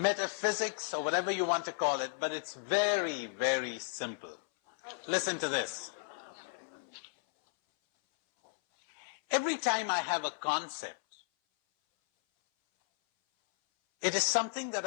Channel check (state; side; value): silent; right; 55 dB below the other